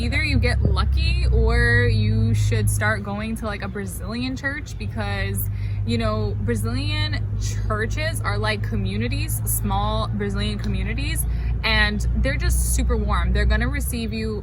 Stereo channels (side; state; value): both; identical; correlation 1.00